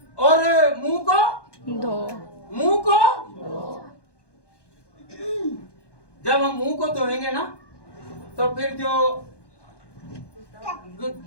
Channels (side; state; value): right; late; 1.1 ms